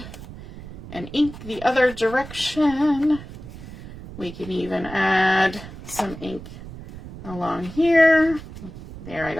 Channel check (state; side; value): noise; right; rumble, 14 dB below the sound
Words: and ink the other direction. We can even add some ink along here. There, I